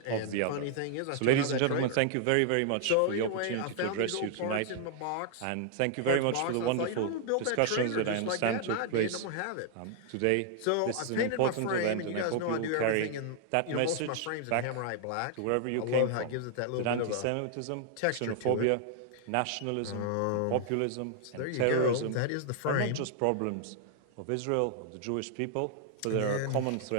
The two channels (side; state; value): both; different; correlation -0.01